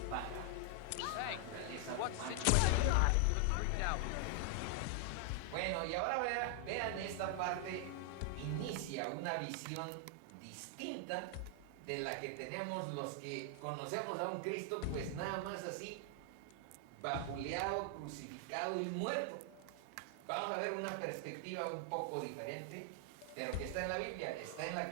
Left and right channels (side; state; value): both; different; correlation 0.00